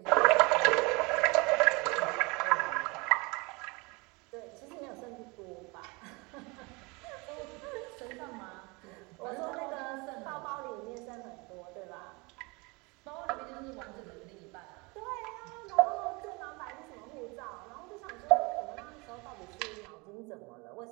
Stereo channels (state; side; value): quieter; left; 26.6 dB